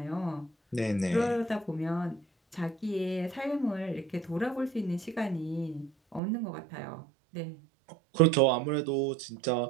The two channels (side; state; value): left; drops out; at 6.2 s